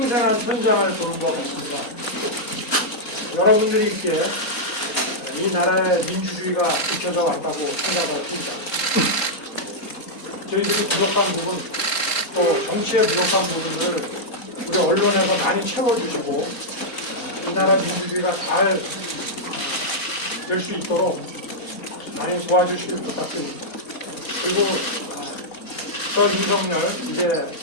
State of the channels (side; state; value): both; normal; correlation -0.06